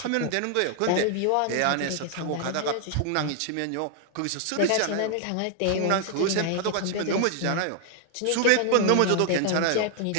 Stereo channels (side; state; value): both; different; correlation 0.00